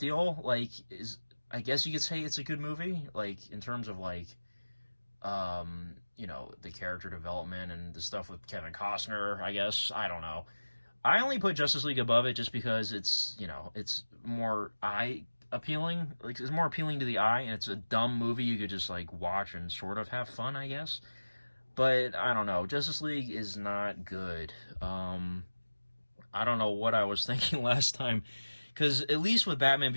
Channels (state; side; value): inverted; both; correlation -1.00